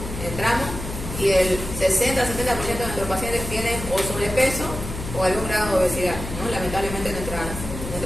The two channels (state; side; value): noise; left; hum, 8 dB below the sound